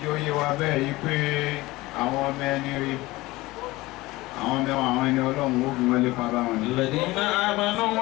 jó yé wa bẹ́ẹ̀ yí pé àwọn ọmọ ẹni rí àwọn mẹ́wàá àwọn ẹni ọlọ́run ó fi wọlé pa bá wọn ní. Alladhina amanu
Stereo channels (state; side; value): quieter; right; 19.9 dB